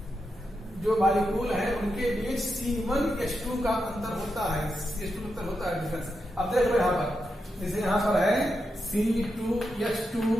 जो मॉलिक्यूल है उनके बीच C1H2 का अंतर होता है, CH2 अंतर होता है, डिफरेंस। अब देख लो यहां पर, जैसे यहां पर है C2H2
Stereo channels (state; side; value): normal; both; correlation 0.86